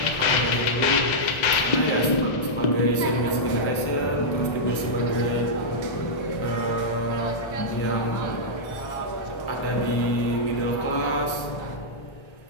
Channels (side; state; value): right; late; 1.3 ms